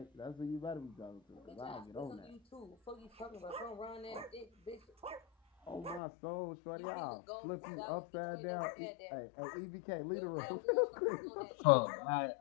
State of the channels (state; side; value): drops out; right; at 6.0 s